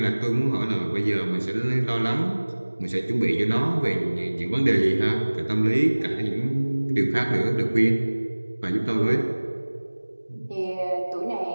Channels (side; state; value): both; inverted; correlation -1.00